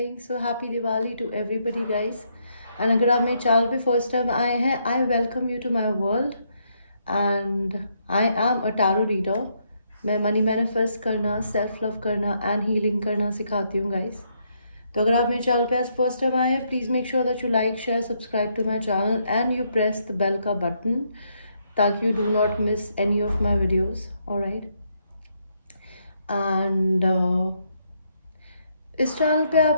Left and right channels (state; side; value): inverted; both; correlation -0.75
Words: So happy Diwali to everybody guys. And अगर आप मेरे channel पे first time आए हैं, I welcome you to my world. And I am a tarot reader. मैं money manifest करना, self love करना and healing करना सिखाती हूँ गाइस. तो अगर आप मेरे चैनल पे आज फर्स्ट टाइम आए हैं, please make sure that you like share subscribe to my channel and you press the bell का बटन ताकि you do not miss any of my videos. Alright. And इस चैनल पे